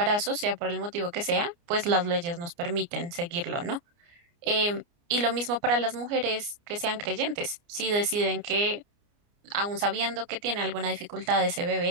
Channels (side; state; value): left; late; 29 ms